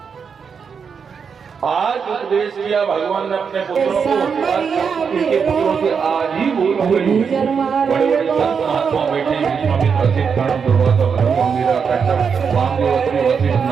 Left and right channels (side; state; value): left; quieter; 6.3 dB